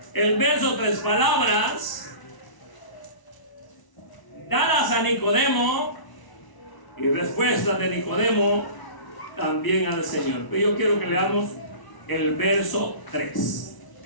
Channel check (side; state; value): right; late; 1.0 ms